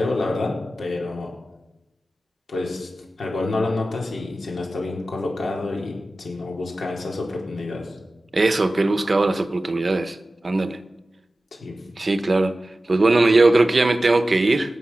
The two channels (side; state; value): both; normal; correlation 0.95